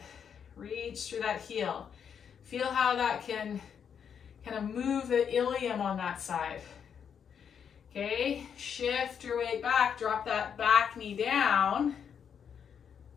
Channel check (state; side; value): quieter; right; 7.6 dB